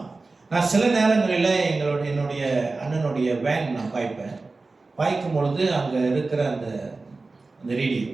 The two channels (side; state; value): left; quieter; 3.6 dB